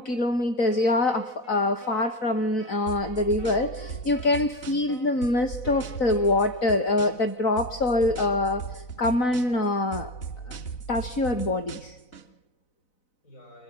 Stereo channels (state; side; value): late; right; 4.0 ms